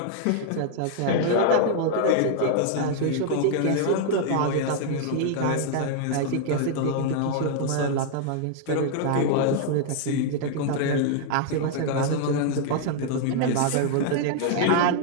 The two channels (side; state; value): both; different; correlation 0.00